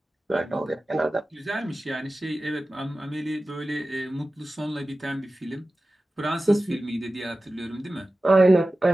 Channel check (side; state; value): both; normal; correlation 0.95